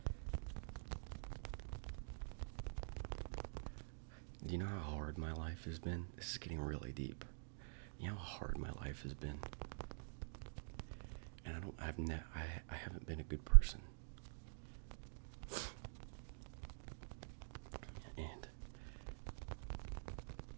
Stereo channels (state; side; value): silent; left; digital silence